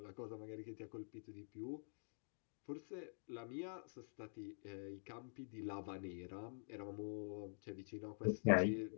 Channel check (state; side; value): silent; right; digital silence